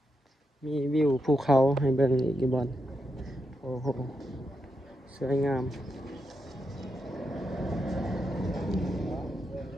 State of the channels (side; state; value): both; normal; correlation 0.84